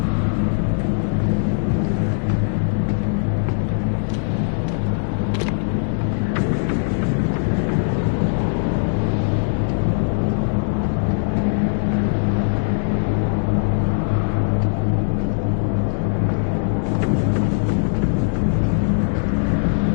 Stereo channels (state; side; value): silent; right; digital silence